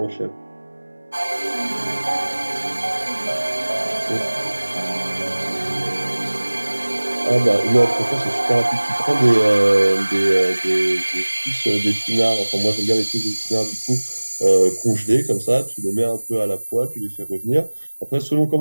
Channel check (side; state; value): both; inverted; correlation -1.00